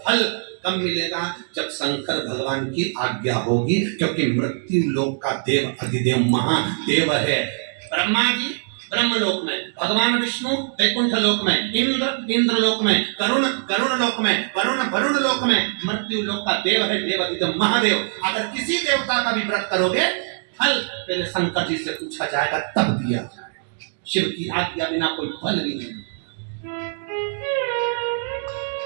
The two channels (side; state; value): left; silent; digital silence